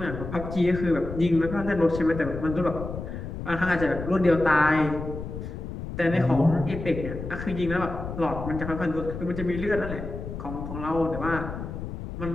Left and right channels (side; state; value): left; noise; rumble, 8 dB below the sound